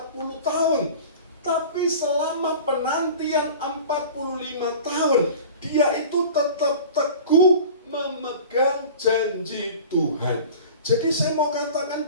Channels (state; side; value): inverted; both; correlation -0.39